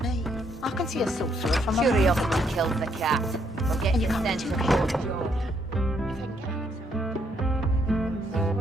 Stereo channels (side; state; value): both; normal; correlation 0.72